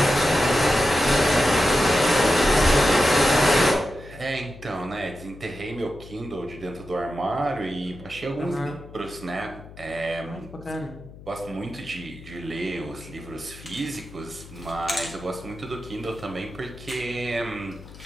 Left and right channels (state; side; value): noise; left; hum, 18 dB below the sound